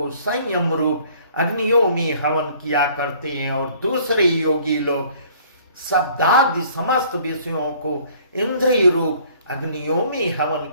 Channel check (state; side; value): inverted; both; correlation -0.56